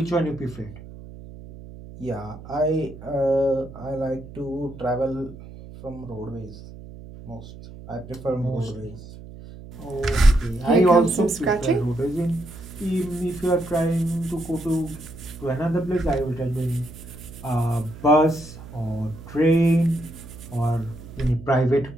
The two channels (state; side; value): noise; right; hum, 15 dB below the sound